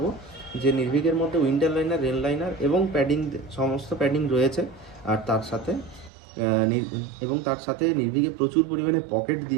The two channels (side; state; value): left; drops out; at 6.1 s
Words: যে নির্ভীকের মধ্যে উইন্টার লাইনার, রেন লাইনার এবং প্যাডিং, সমস্ত প্যাডিং রয়েছে। আর তার সাথে নির্ভীকে প্রচুর পরিমাণে পকেট